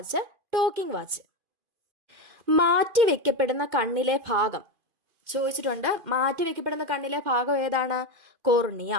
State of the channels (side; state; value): left; late; 2.5 ms